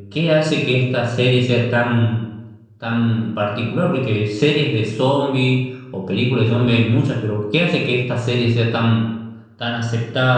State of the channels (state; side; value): identical; both; correlation 1.00